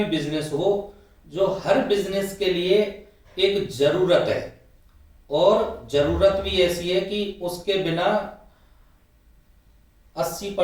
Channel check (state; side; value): identical; both; correlation 1.00